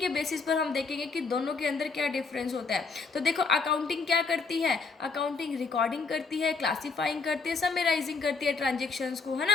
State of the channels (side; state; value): right; quieter; 4.5 dB